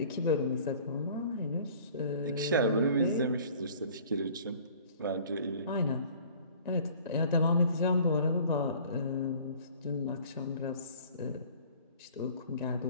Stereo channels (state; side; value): inverted; both; correlation -0.50